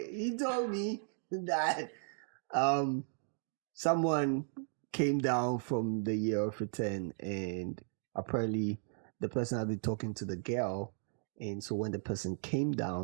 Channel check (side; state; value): left; silent; digital silence